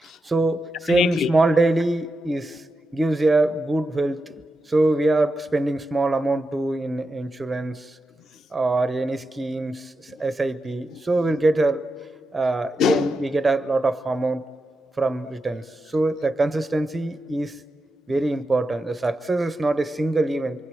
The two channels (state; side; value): normal; both; correlation 0.88